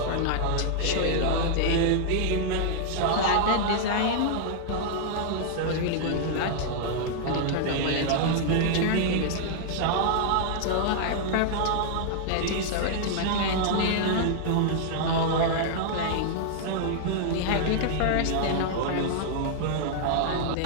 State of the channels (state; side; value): different; both; correlation -0.01